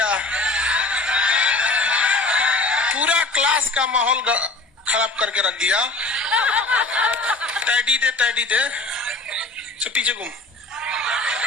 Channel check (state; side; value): quieter; right; 3.0 dB